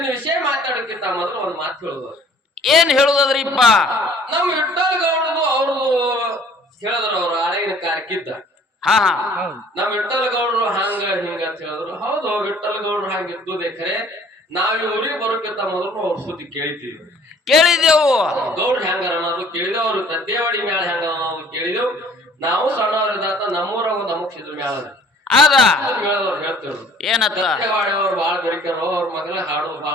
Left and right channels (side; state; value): both; normal; correlation 0.54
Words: ವಿಷಯ ಮಾತಾಡೋಕ್ಕಿಂತ ಮೊದಲು ಒಂದ್ ಮಾತು ಹೇಳುದು. ಏನ್ ಹೇಳುದದ್ರಿಪ್ಪ? ನಮ್ ವಿಠಲ್ ಗೌಡ್ರದು ಅವ್ರದು ಹೇಳಿದ್ರು, ಅವ್ರು ಹಳೆಗಿನ ಕಾರ್ಯಕ್ಕಿದ್ದ. ನಮ್ ವಿಠಲ್ ಗೌಡ್ರು ಹಂಗ ಹಿಂಗ ಅಂತ ಹೇಳಿದ್ರು. ಹೌದು, ವಿಠಲ್ ಗೌಡ್ರು ಹಂಗಿದ್ದು ಖರೆ. ನಾವ್ ಈ ಊರಿಗೆ ಬರೋಕ್ಕಿಂತ ಮೊದಲು ಅವ್ರ ಸುದ್ದಿ ಕೇಳಿದೆವು. ಗೌಡ್ರು ಹೆಂಗ ಅನ್ನೋದು ಕೇಳಿದೆವು, ಅವ್ರು ತದ್ದೇವಾಡಿ ಮ್ಯಾಲ ಹೆಂಗ ಅನ್ನೋದು ಕೇಳಿದೆವು. ನಾವು ಸಣ್ಣವ್ರದಾತ ನಮ್ಮೂರ ಒಂದು ಅಮುಕ್ಷಿದ್ರ ಮ್ಯಾಲ ಏನತ್ತ ಅವ್ರು ಬಾಳ ಬೆರಿಕರು, ಅವ್ರ ಮಗಲ ಹಾಡೋದು ಬಾಳ